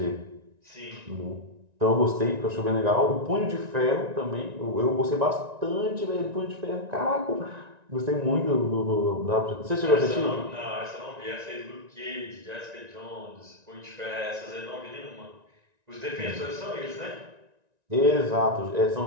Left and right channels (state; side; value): late; left; 1.9 ms